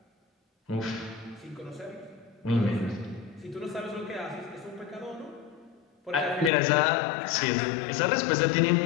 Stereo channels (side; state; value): right; drops out; at 6.5 s